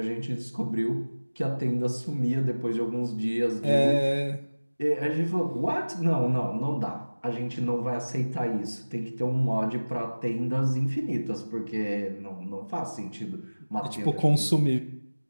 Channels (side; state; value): both; inverted; correlation -1.00